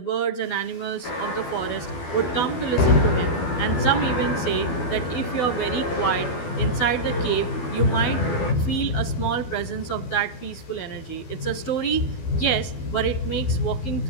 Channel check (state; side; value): late; right; 12 ms